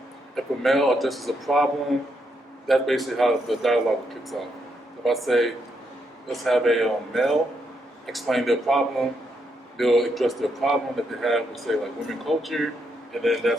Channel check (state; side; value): normal; both; correlation 0.78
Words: if a male addresses a problem, that's basically how the dialogue kicks off. If I say, let's have a male explain their problem, they'll address their problem that they have with, say, women culture, and then